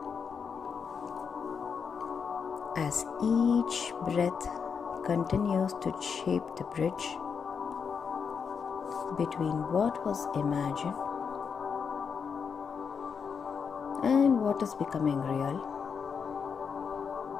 as each breath continues to shape the bridge between what was imagined and what is becoming real.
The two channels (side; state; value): right; quieter; 6.3 dB